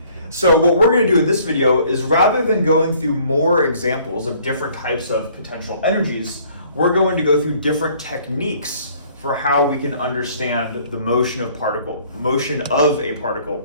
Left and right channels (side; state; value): both; inverted; correlation -0.58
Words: So what we're going to do in this video is, rather than going through more examples of different types of potential energies, we're going to go through different techniques for how we can understand the motion of a particle